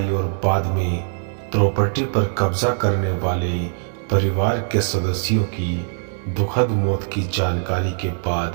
और बाद में प्रॉपर्टी पर कब्जा करने वाले परिवार के सदस्यों की दुखद मौत की जानकारी के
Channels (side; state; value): left; silent; 65 dB below the other